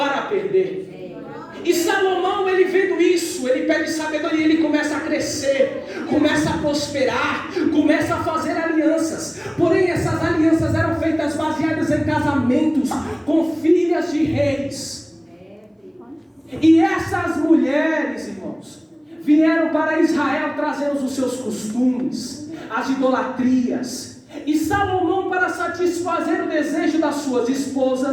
perder. E Salomão, ele vendo isso, ele pede sabedoria, ele começa a crescer, começa a prosperar, começa a fazer alianças. Porém, essas alianças eram feitas baseadas em casamentos com filhas de reis. E essas mulheres, irmãos, vieram para Israel trazendo os seus costumes, as idolatrias. E Salomão, para satisfazer o desejo das suas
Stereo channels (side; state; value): both; identical; correlation 1.00